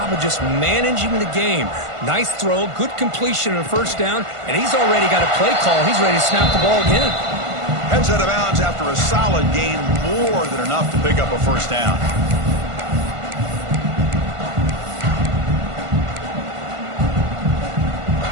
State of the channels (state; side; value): late; left; 1.5 ms